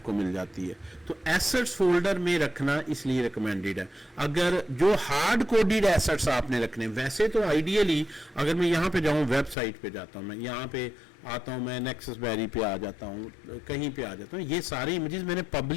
मिल जाती है। तो एसेट्स फोल्डर में रखना इसलिए रिकमेंडेड है। अगर जो हार्ड कोडेड एसेट्स आपने रखने, वैसे तो आइडियली अगर मैं यहाँ पे जाऊँ, वेबसाइट पे जाता हूँ, मैं यहाँ पे आता हूँ, मैं नेक्ससबेरी पे आ जाता हूँ, कहीं पे आ जाता हूँ, ये सारे इमेजेस मैंने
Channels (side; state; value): right; drops out; at 9.6 s